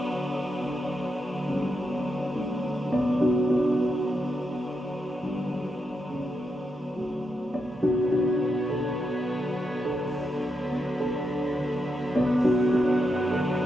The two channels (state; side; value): normal; both; correlation 0.83